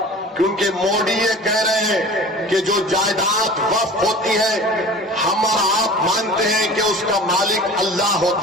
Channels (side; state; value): both; normal; correlation 0.40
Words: क्योंकि मोदी ये कह रहे हैं कि जो जायदाद वक्फ होती है, हम और आप मानते हैं कि उसका मालिक अल्लाह